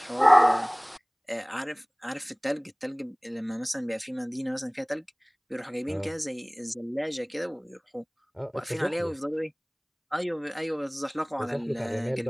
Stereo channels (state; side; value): identical; both; correlation 1.00